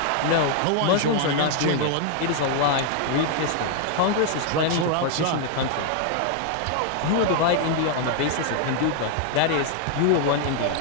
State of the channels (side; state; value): both; different; correlation 0.00